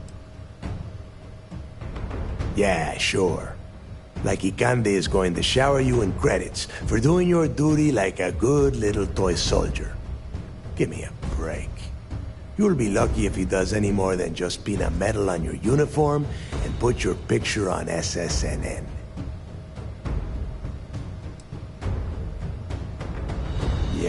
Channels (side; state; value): both; identical; correlation 1.00